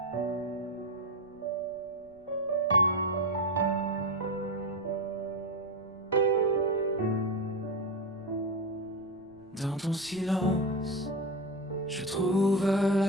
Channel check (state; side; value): noise; right; rumble, 29 dB below the sound